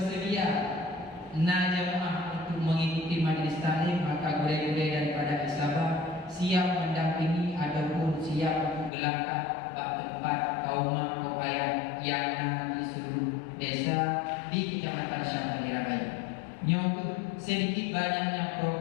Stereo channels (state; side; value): drops out; right; at 8.9 s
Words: jamaah untuk mengikuti majlis ta'lim, maka guru-guru daripada Sabah siap mendampingi ataupun siap untuk gelangkah tempat kaum ayah yang di seluruh desa di Kecamatan Syam Kalirabayu. Untuk sedikit banyaknya